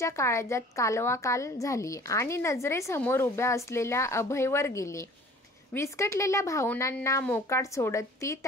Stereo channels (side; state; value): both; normal; correlation 0.48